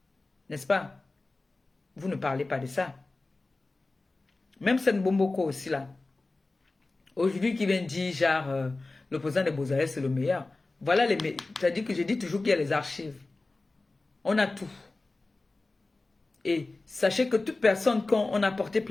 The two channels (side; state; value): right; quieter; 3.3 dB